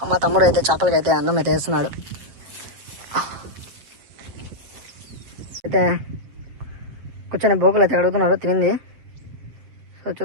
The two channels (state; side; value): late; left; 7.5 ms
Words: మా తమ్ముడు అయితే చేపలకి అయితే అన్నం అయితే వేస్తున్నాడు. అయితే కూర్చొని బోకులు అయితే అడుగుతున్నారు తినింది. సో